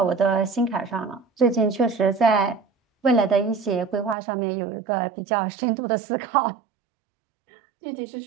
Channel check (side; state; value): left; drops out; at 4.2 s